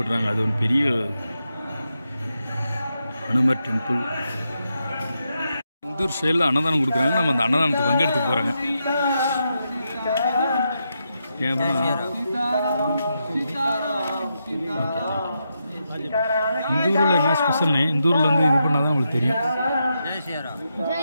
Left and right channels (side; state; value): both; inverted; correlation -0.84